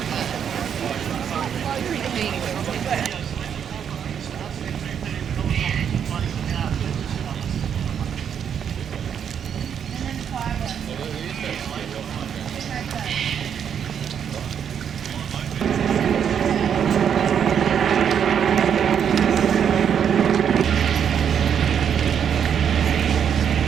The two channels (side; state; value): left; quieter; 8.2 dB